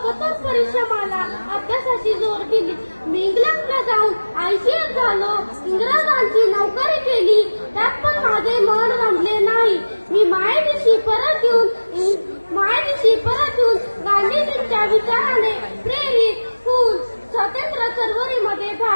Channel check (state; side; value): inverted; both; correlation -1.00